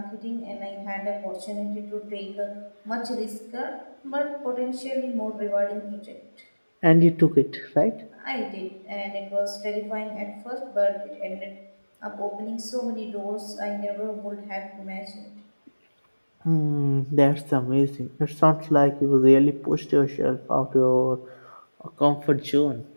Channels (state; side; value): inverted; both; correlation -1.00